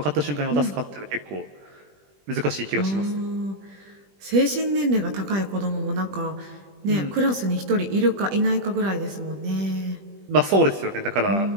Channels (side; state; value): left; late; 20 ms